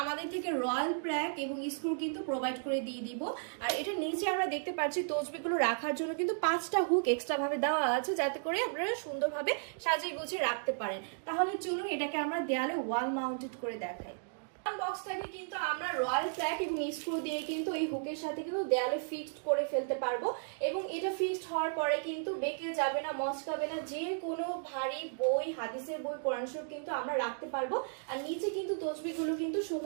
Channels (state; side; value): silent; left; digital silence